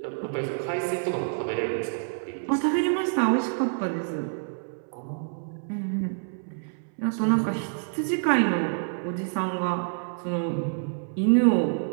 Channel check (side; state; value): left; silent; 60 dB below the other